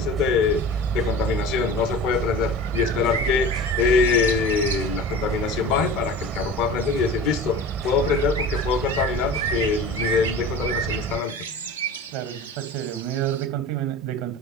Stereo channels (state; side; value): normal; both; correlation 0.36